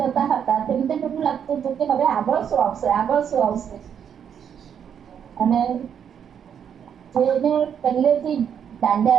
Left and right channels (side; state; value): left; quieter; 8.3 dB